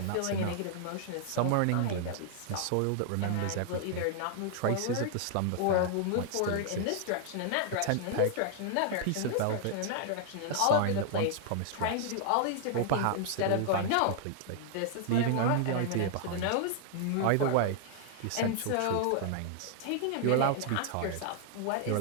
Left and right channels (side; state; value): both; different; correlation 0.00